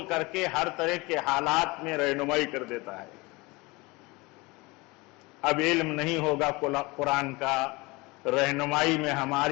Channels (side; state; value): right; quieter; 24.1 dB